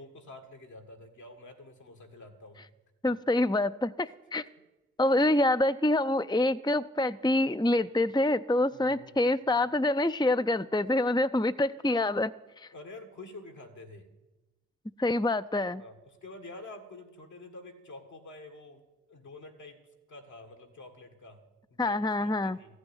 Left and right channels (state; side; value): normal; both; correlation 0.67